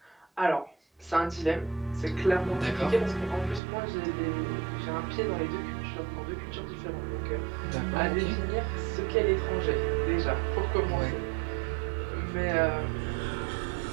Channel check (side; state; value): left; drops out; at 3.6 s